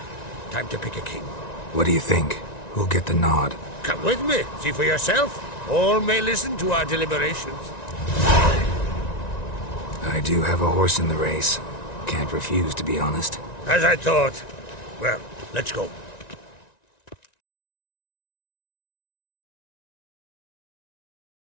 Time to pick a king. What do you think? Who'll get the nod? Come with me, see for yourself. All may listen to our deliberations. I do have a horse in the race. Can't refuse, to be honest. As I thought. Well, let's go.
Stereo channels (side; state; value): right; late; 1.9 ms